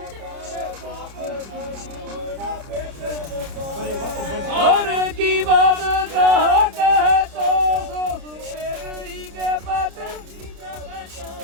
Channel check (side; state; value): left; late; 30 ms